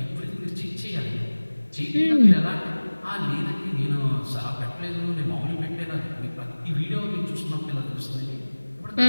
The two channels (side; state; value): both; inverted; correlation -1.00